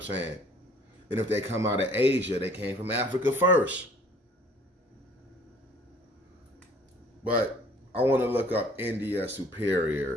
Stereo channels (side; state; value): both; normal; correlation 0.55